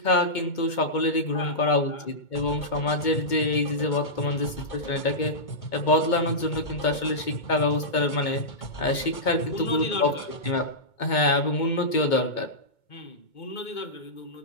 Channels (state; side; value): late; right; 2.2 ms